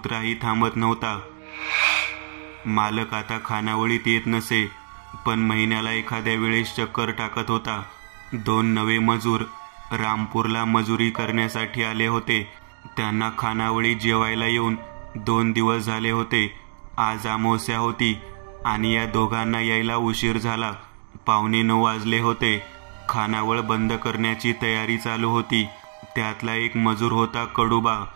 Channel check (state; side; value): silent; left; digital silence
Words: थांबत नव्हता. मालक आता खानावळीत येत नसे, पण महिन्याला एखाद्या वेळेस चक्कर टाकत होता. 2 नवे मजूर रामपूरला मजुरी करण्यासाठी आले होते. त्यांना खानावळीत जेवायला येऊन 2 दिवस झाले होते. आज अमावस्या होती आणि या दोघांना यायला उशीर झाला. 9:15 वाजले होते. खानावळ बंद करण्याची तयारी चालू होती. त्यातला एक मजूर होता कडूबा.